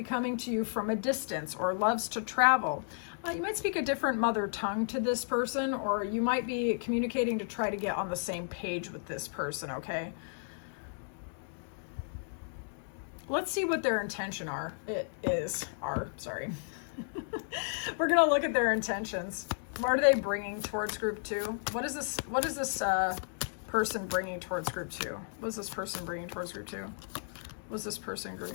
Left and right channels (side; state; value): right; silent; digital silence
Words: coming to you from a distance or loves to travel. You might speak a different mother tongue to this person, or you might be communicating to try to get on the same page with this person, okay? Let's see what their intention sorry. We're going to look at their intentions. What are they bringing towards group 2? What is this person bringing towards group 2? What is this person bringing towards group 2? What's this person bringing